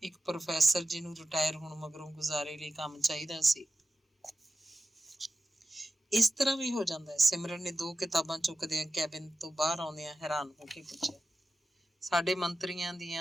ਇੱਕ ਪ੍ਰੋਫੈਸਰ ਜਿਹਨੂੰ ਰਿਟਾਇਰ ਹੋਣ ਮਗਰੋਂ ਗੁਜ਼ਾਰੇ ਲਈ ਕੰਮ ਚਾਹੀਦਾ ਸੀ। ਇਸ ਤਰ੍ਹਾਂ ਵੀ ਹੋ ਜਾਂਦਾ ਹੈ। ਸਿਮਰਨ ਨੇ 2 ਕਿਤਾਬਾਂ ਚੁੱਕਦਿਆਂ ਕੈਬਿਨ ਤੋਂ ਬਾਹਰ ਆਉਂਦਿਆਂ ਹੈਰਾਨ ਹੋ ਕੇ ਪੁੱਛਿਆ, ਸਾਡੇ ਮੰਤਰੀਆਂ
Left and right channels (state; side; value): normal; both; correlation 0.93